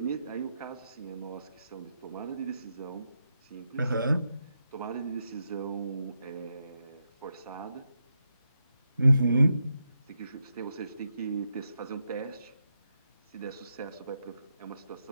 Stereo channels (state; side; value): inverted; both; correlation -0.84